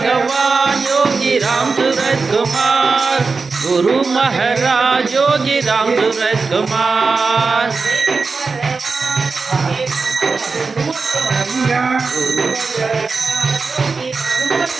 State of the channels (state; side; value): quieter; left; 4.4 dB